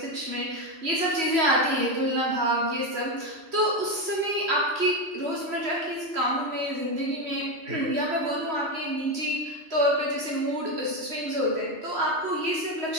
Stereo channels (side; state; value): left; late; 3.0 ms